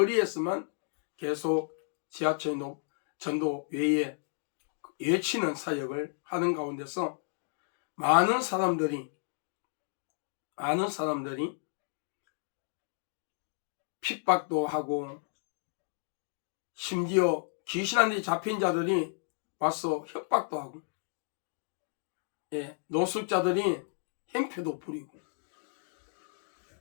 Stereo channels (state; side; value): silent; right; digital silence